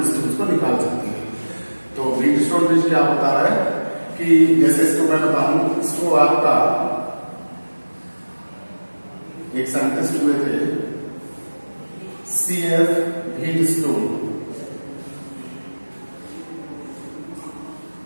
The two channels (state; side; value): inverted; both; correlation -1.00